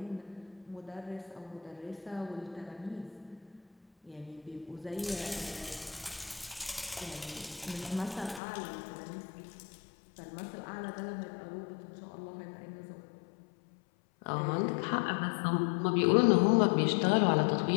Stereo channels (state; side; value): drops out; right; at 8.4 s